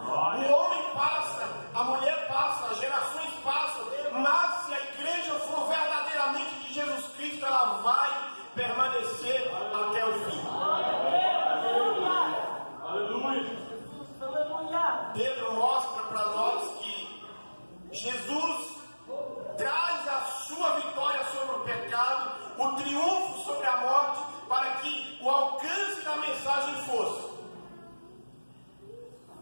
homem passa, a mulher passa, as gerações passam, mas se a igreja for verdadeiramente de Jesus Cristo, ela vai permanecer até o fim. Pedro mostra para nós que Jesus traz a sua vitória sobre o pecado, o triunfo sobre a morte, para que o alcance da mensagem fosse:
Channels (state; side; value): inverted; both; correlation -1.00